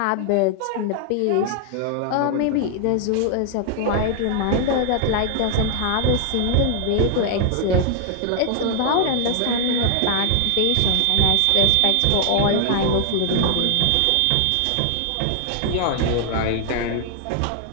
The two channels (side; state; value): both; different; correlation 0.00